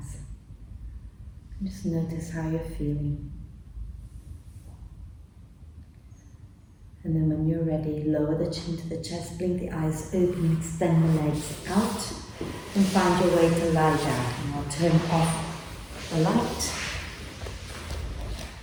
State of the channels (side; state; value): both; identical; correlation 1.00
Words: Just notice how you're feeling. And then when you're ready, lower the chin to the chest, blink the eyes open, extend the legs out, and find your way to lie down. And I'll turn off the light.